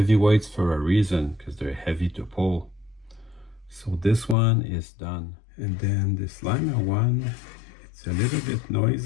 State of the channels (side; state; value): right; drops out; at 4.4 s